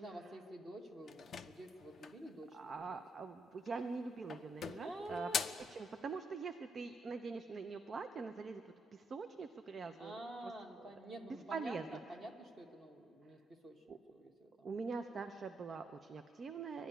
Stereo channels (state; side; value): normal; both; correlation 0.78